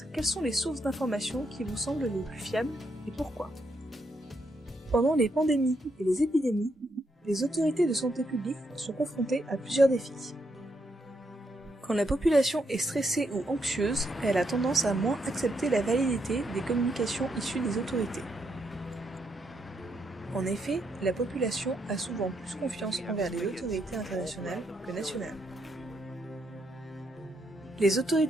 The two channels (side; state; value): both; normal; correlation 0.78